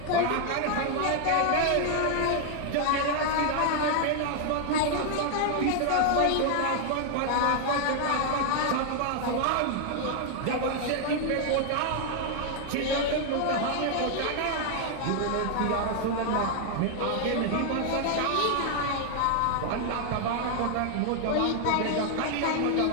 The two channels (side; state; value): both; different; correlation 0.00